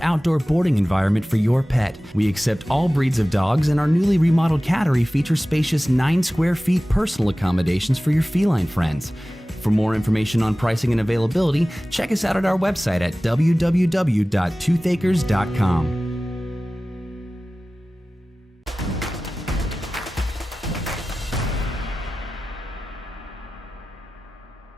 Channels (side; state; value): both; normal; correlation 0.97